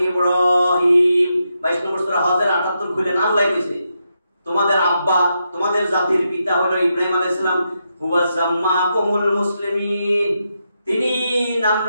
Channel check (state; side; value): inverted; both; correlation -0.84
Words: ইব্রাহিম। 22 নম্বর সূরা হজের 78 খুলেন, আল্লাহ কইছে তোমাদের আব্বা, তোমাদের জাতির পিতা হলো ইব্রাহিম আলাইহিস সালাম। হুয়া সাম্মাকুমুল মুসলিমিন, তিনি নাম